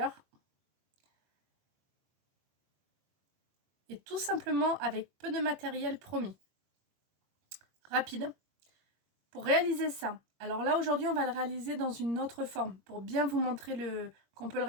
Et tout simplement avec peu de matériel promis. Rapide. Pour réaliser ça, alors là, aujourd'hui, on va le réaliser dans une autre forme. Pour bien vous montrer qu'on peut le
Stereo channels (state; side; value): late; left; 21 ms